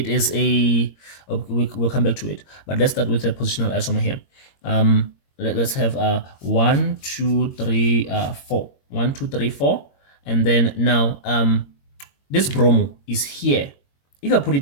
is a we'll come back to it, but let's start with the positional isomer here. Let's have 1, 2, 3, 4. 1, 2, 3, 4, and then now this bromo is here. If I put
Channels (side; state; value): right; late; 22 ms